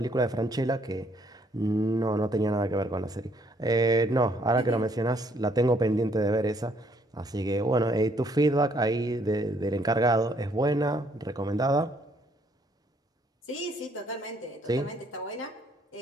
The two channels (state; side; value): normal; both; correlation 0.67